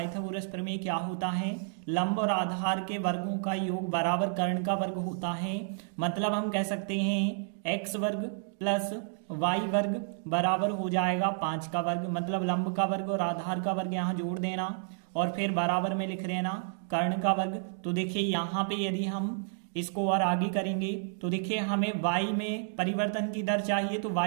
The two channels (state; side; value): silent; left; digital silence